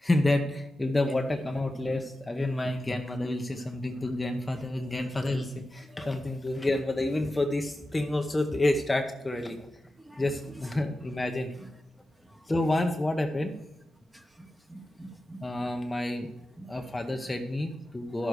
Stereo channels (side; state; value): both; normal; correlation 0.92